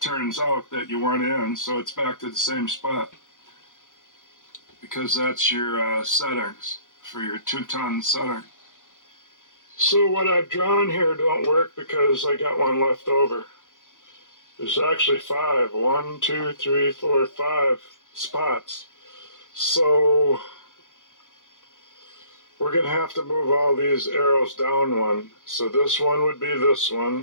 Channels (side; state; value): right; late; 0.87 ms